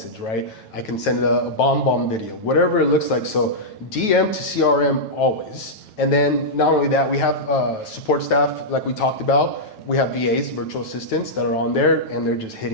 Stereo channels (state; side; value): late; right; 9.2 ms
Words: right? I can send a bomb video, whatever it looks like. So DM to CRM always. And then not only that, we have support staff like we talked about. We have VAs, virtual assistants, that are on there, and they're just